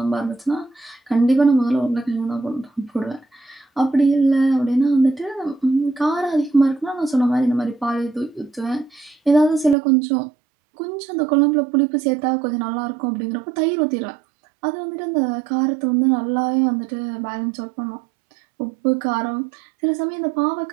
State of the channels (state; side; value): drops out; left; at 9.8 s